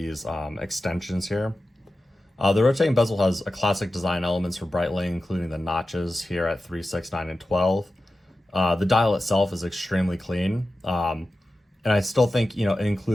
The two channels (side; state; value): both; normal; correlation 0.93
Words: extensions here. The rotating bezel has a classic design elements for Breitling, including the notches here at 3, 6, 9, and 12. The dial itself is extremely clean, and I still think, you know, it